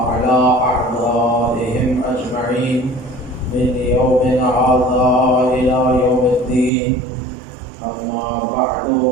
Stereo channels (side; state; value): left; drops out; at 6.7 s